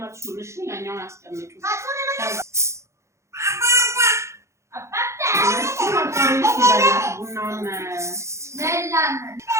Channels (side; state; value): left; late; 0.14 ms